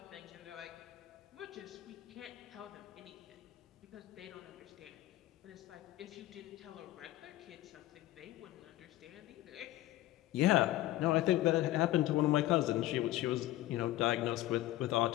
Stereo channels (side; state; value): right; quieter; 15.7 dB